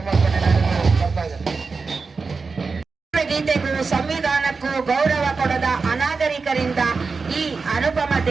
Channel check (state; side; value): quieter; left; 4.5 dB